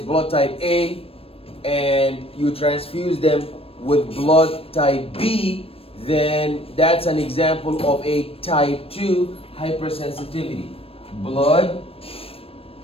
blood type A and you transfuse them with blood type B, then that's an example of a type 2 hypersensitivity. Blood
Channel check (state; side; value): late; right; 0.28 ms